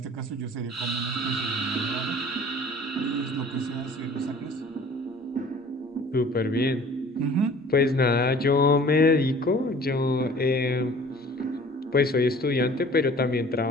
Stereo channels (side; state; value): both; normal; correlation 0.48